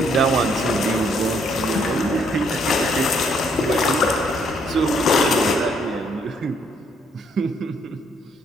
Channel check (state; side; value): normal; both; correlation 0.69